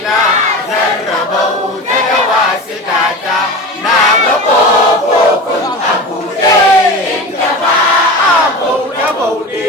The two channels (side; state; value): both; normal; correlation 0.29